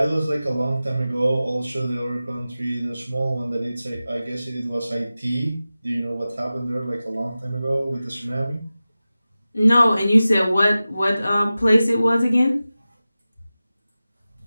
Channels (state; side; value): inverted; both; correlation -0.96